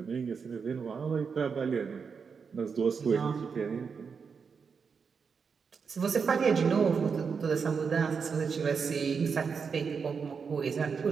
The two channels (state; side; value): quieter; left; 5.8 dB